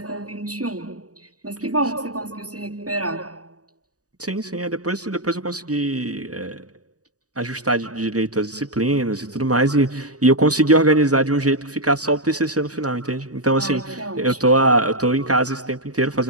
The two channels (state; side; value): late; left; 0.67 ms